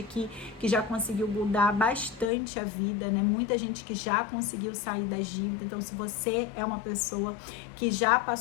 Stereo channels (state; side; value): drops out; right; at 2.3 s